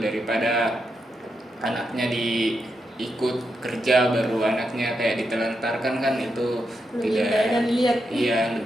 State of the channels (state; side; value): normal; both; correlation 0.84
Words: anaknya ikut kerja baru anaknya kayak ditelantarkan, kan itu Lebih tidak. banyak dilihat. Iya,